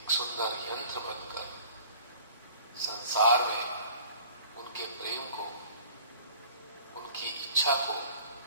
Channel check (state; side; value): inverted; both; correlation -0.48